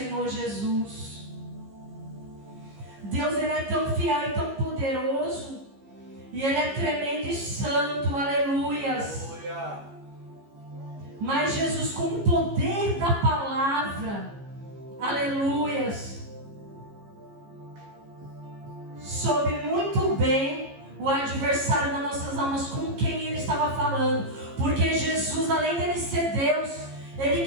Jesus. Deus, ele é tão fiel e tão poderoso, e ele é tremendo e santo, aleluias. Mas Jesus, com o poder da palavra, aleluias, soube muito bem o adversário das nossas almas, com quem ele estava falando. Porque Jesus, além dele ser Deus, ele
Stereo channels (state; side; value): late; left; 15 ms